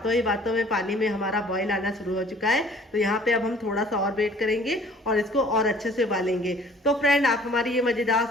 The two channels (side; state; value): both; normal; correlation 0.53